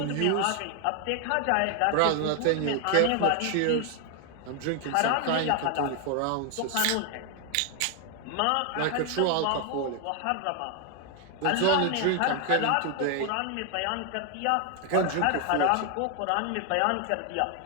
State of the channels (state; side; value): different; both; correlation 0.01